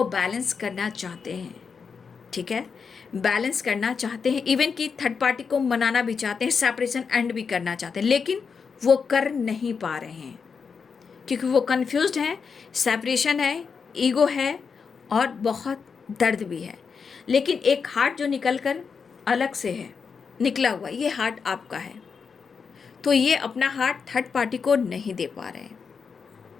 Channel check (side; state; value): right; quieter; 5.7 dB